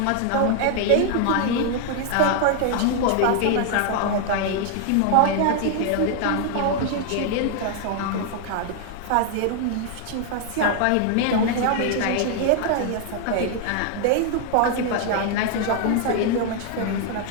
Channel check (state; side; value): different; both; correlation 0.00